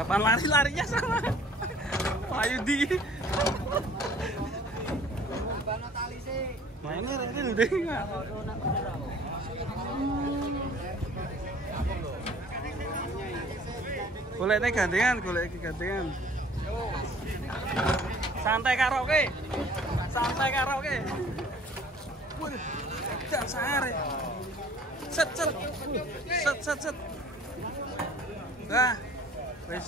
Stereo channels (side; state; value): both; normal; correlation 0.52